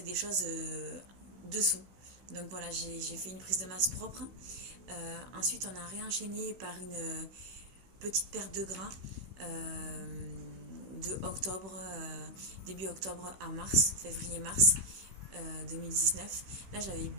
des choses dessous. Donc voilà, j'ai fait une prise de masse propre. Ensuite, on a réenchaîné par une petite perte de gras de octobre, début octobre à mars, février-mars 2019. Là, j'avais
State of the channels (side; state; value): left; late; 16 ms